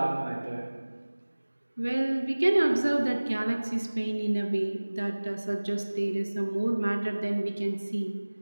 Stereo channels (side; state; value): both; inverted; correlation -1.00